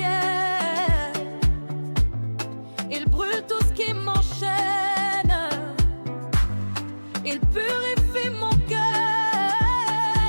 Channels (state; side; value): inverted; both; correlation -1.00